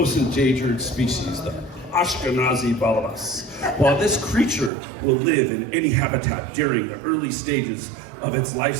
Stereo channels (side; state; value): left; drops out; at 4.7 s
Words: endangered species, the Ashkenazi balabas. While this creature will live in any habitat during the early stages of its life